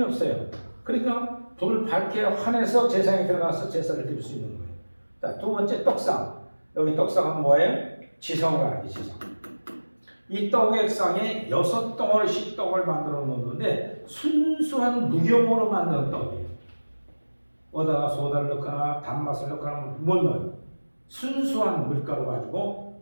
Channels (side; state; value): both; inverted; correlation -1.00